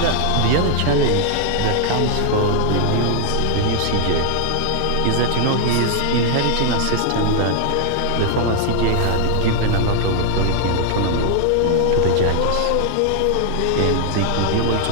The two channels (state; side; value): different; both; correlation -0.01